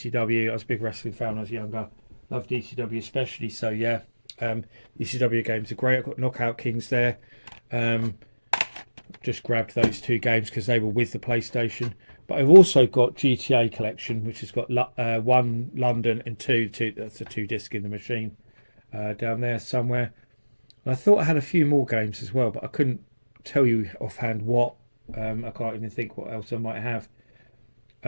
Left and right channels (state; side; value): inverted; both; correlation -1.00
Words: I was a big wrestling fan when I was younger. Loved ECW especially, so yeah. ECW games are great. I've got Knockout Kings there. Just grabbed those 2 games because they were with the PlayStation. But I've also got GTA Collection, which has got 1 London and 2. That's a 2-disc in the machine down there somewhere. And I thought I had a few more games as well, but I couldn't tell you offhand what. I can't even think what else I might have.